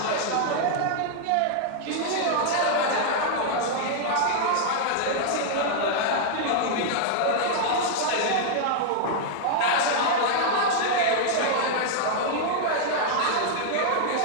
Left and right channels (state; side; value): different; both; correlation -0.01